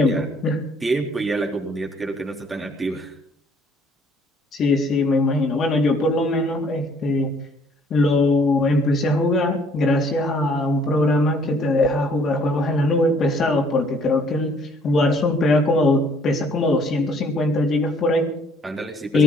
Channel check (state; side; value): normal; both; correlation 0.61